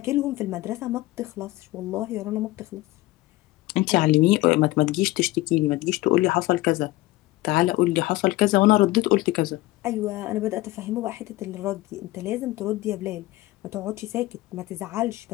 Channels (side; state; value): right; quieter; 18.4 dB